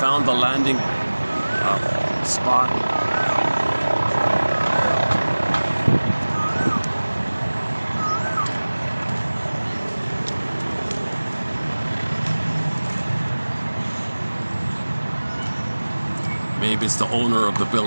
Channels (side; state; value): both; inverted; correlation -1.00